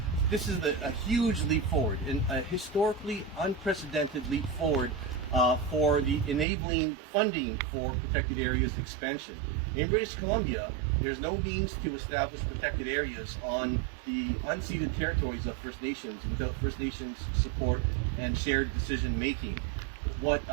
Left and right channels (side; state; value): left; drops out; at 6.5 s